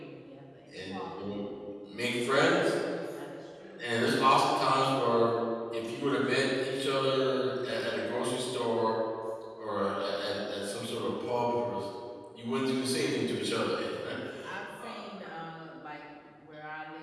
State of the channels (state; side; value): identical; both; correlation 1.00